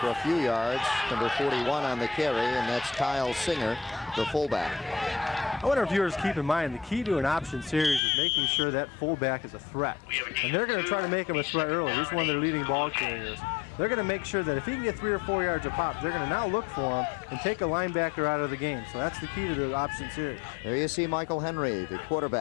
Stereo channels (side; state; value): right; drops out; at 8.0 s